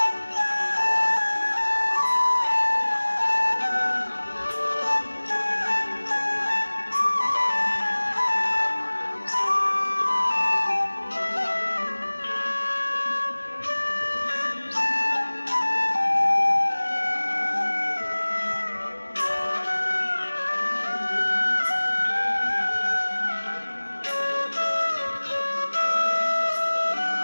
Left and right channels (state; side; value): inverted; both; correlation -1.00